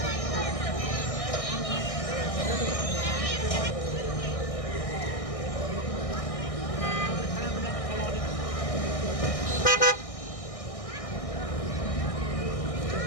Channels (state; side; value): late; right; 1.6 ms